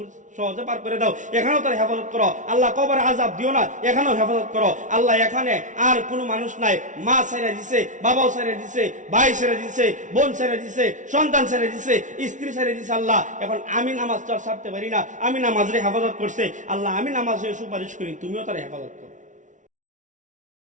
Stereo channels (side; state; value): left; late; 0.37 ms